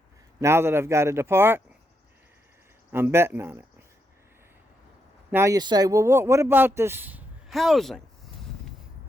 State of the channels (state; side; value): normal; both; correlation 0.81